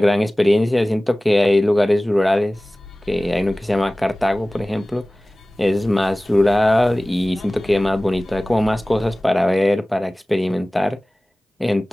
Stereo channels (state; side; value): normal; both; correlation 0.98